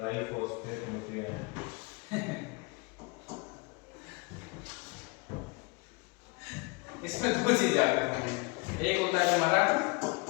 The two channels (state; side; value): quieter; right; 27.9 dB